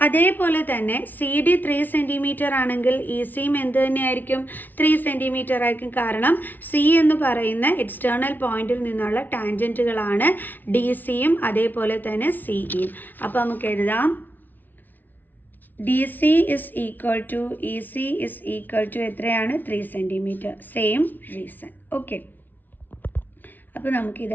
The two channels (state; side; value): late; right; 0.085 ms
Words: അതേപോലെ തന്നെ സി ഡി 3 cm ആണെങ്കിൽ ഇ സിയും എന്ത് തന്നെയായിരിക്കും? 3 cm ആയിരിക്കും. കാരണം സി എന്ന് പറയുന്ന എക്സ്റ്റേണൽ പോയിന്റിൽ നിന്നുള്ള ടാൻജൻറ്റുകളാണ് ഡി സിയും അതേപോലെ തന്നെ സി ഇയും. അപ്പോൾ നമുക്ക് എഴുതാം D C is equal to E C is equal to എത്രയാണ്? 3 cm. Same reason. ഓക്കെ, അപ്പോൾ